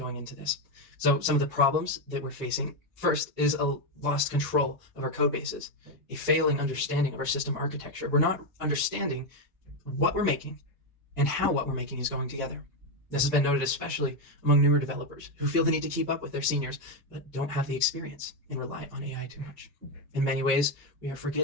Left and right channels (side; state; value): both; normal; correlation 0.07